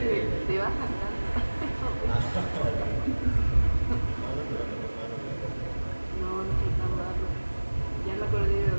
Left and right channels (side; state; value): both; inverted; correlation -1.00